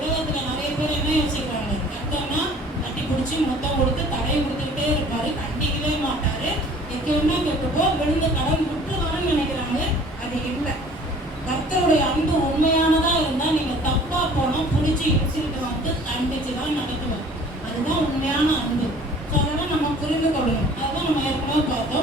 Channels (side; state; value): both; normal; correlation 0.50